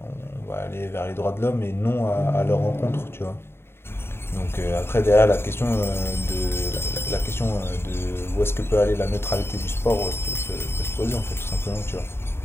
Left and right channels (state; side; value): late; right; 0.11 ms